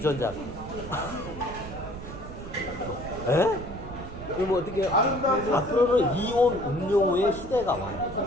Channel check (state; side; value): noise; right; rumble, 11 dB below the sound